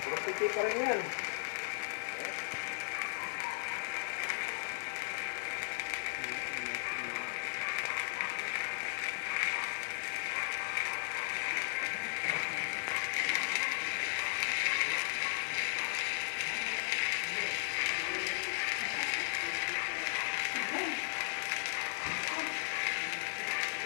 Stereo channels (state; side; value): silent; right; digital silence